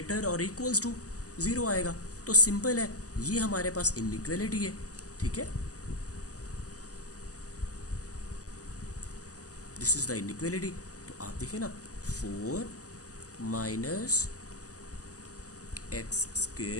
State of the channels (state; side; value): late; right; 0.67 ms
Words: और इक्वल्स टू ज़ीरो आएगा। तो सिंपल है, ये हमारे पास इनइक्वालिटी है। ठीक है, दिस इज़ द इनइक्वालिटी। तो आप देखिए ना, 4 माइनस एक्स